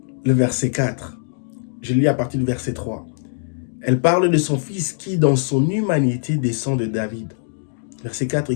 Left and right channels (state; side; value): silent; right; digital silence